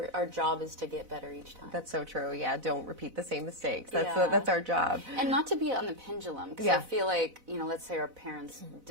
our job is to get better each time. That's so true. Yeah, don't repeat the same mistakes. That's our job. And not to be on the pendulum, because I feel like, you know, let's say our parents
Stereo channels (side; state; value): left; late; 4.0 ms